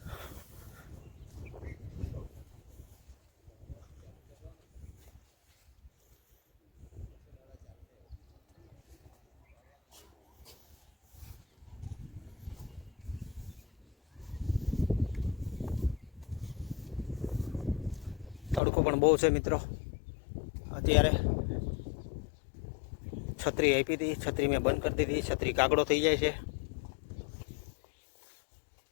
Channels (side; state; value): right; drops out; at 18.6 s